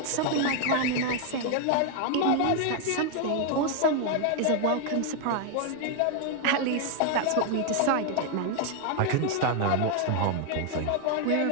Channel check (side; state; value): both; different; correlation 0.00